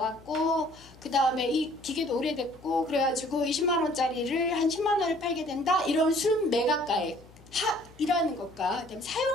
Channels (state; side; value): noise; left; hum, 24 dB below the sound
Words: 그 다음에 이 기계도 오래됐고 그래가지고 20만 원짜리를 한 10만 원에 팔게 된다, 이런 순매각가액 이라는 것과, 그다음에